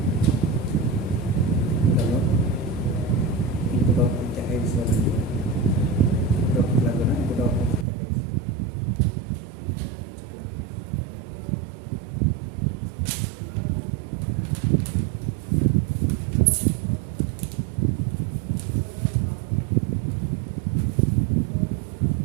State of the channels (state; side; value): drops out; left; at 7.9 s